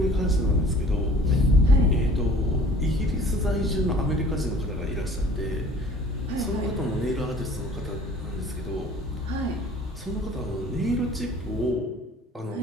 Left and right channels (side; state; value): both; normal; correlation 0.50